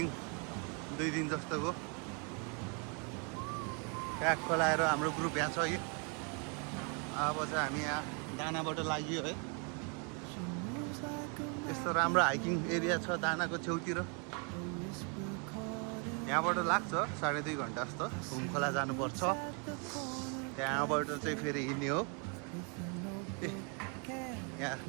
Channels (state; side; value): quieter; left; 36.6 dB